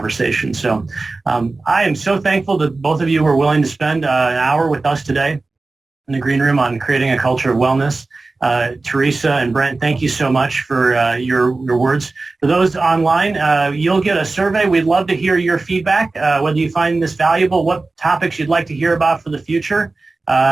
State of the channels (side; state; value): left; quieter; 3.5 dB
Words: So I am so thankful that both of you were willing to spend an hour with us today in the Green Room on creating a culture of wellness. Teresa and Brent, thank you so much for your words. For those online, you'll get a survey. We'd love to hear your feedback, whether you find this valuable, what topics you'd like to hear about for the future.